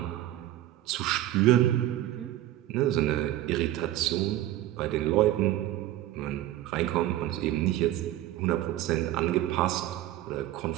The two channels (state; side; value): quieter; left; 14.2 dB